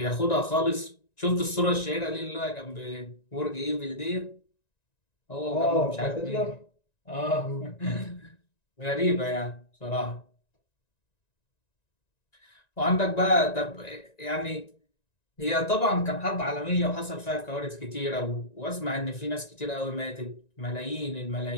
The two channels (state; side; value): late; right; 1.9 ms